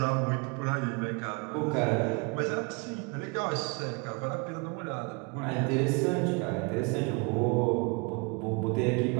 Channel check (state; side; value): quieter; left; 31.2 dB